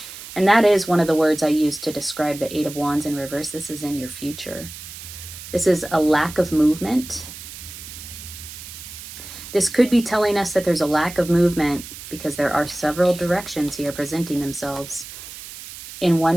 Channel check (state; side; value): noise; right; hiss, 13 dB below the sound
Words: And that is one of the words I use to describe the Eight of Wands in reverse. This is in your future. This is a lack of movement. This could be telling us that there's a lack of movement because there are several directions here presenting themselves on